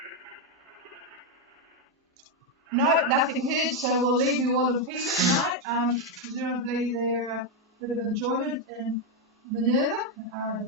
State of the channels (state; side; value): normal; both; correlation 0.04